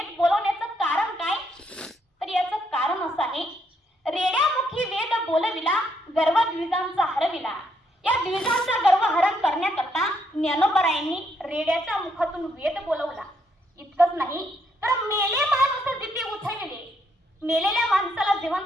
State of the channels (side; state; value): both; normal; correlation 0.74